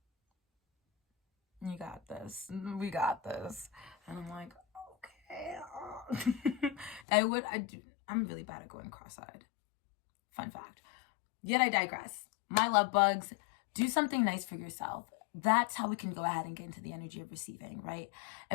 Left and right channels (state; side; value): drops out; right; at 7.0 s